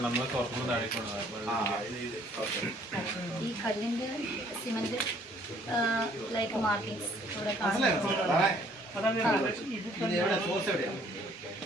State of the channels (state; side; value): normal; both; correlation 0.61